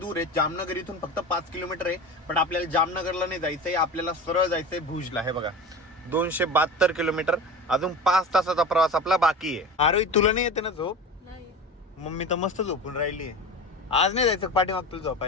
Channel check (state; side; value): normal; both; correlation 0.30